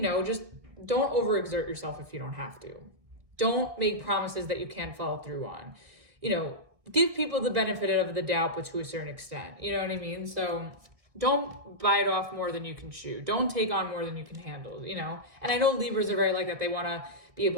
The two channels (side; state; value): left; late; 1.6 ms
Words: know, just don't overexert yourself if you don't have to. Don't make promises that you can't follow through on. You know, give people the benefit of the doubt, but to a certain extent. You know what I mean? So don't bite off more than you can chew. Don't take on more than you can handle, you know? And I know Libras are very like that. They want to be